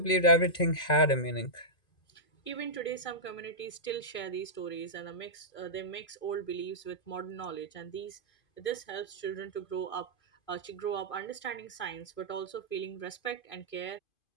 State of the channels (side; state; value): right; late; 2.5 ms